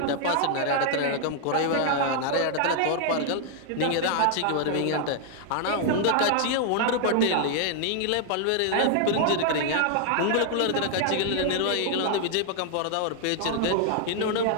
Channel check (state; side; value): different; both; correlation 0.00